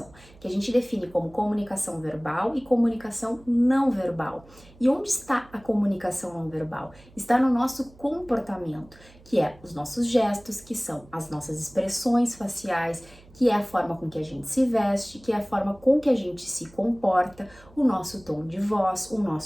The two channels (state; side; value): noise; right; hum, 25 dB below the sound